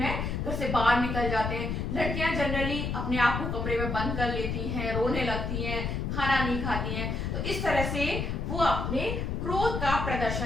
घर से बाहर निकल जाते हैं। लड़कियां जनरली अपने आप को कमरे में बंद कर लेती हैं, रोने लगती हैं, खाना नहीं खाती हैं। तो इस तरह से वो अपने क्रोध का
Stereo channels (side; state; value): left; noise; rumble, 2 dB below the sound